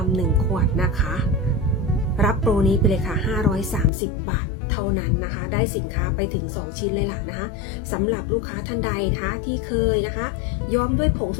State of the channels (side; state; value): right; drops out; at 3.9 s